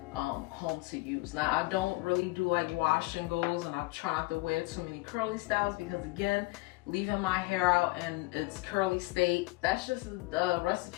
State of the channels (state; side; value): quieter; right; 22.3 dB